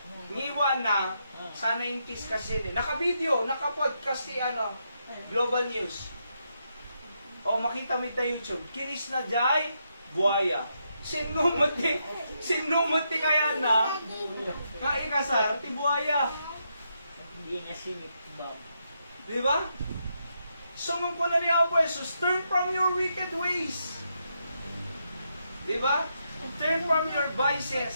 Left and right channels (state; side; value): inverted; both; correlation -0.81